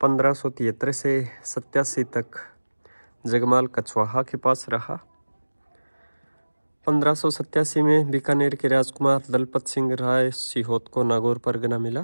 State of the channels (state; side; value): inverted; both; correlation -1.00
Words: 1573 से 87 तक जगमाल कछवाहा के पास रहा। 1587 में बीकानेर के राजकुमार दलपत सिंह राय सिहोत को नागौर परगना